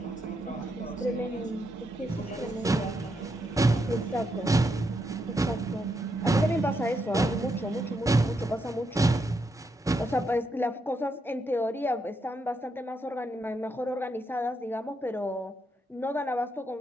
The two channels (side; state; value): both; normal; correlation 0.80